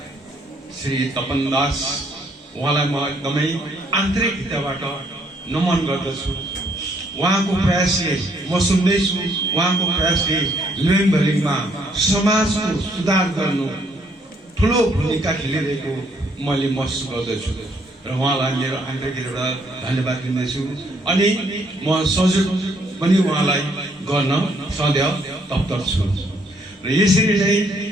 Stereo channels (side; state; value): both; normal; correlation 0.68